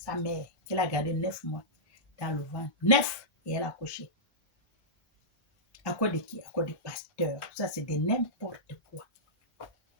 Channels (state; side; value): normal; both; correlation -0.15